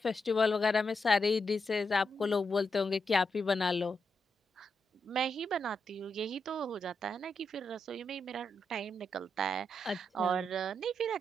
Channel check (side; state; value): both; normal; correlation 0.83